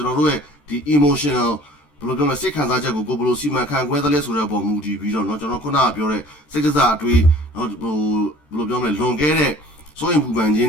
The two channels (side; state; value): right; late; 14 ms